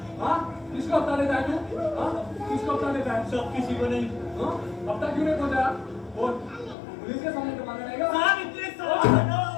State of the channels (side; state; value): right; drops out; at 6.8 s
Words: किसको अपना लेता है तू? किसको अपना लेता है? सब किसी को नहीं। अब तक क्यों नहीं पहुंचा? बोल, पुलिस के सामने तो मांगा रहेगा। साहब इतने साहब